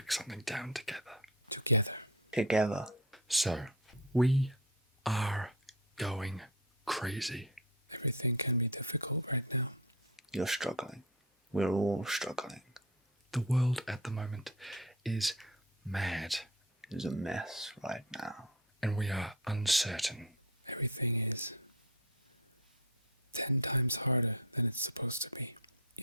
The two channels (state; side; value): normal; both; correlation 0.26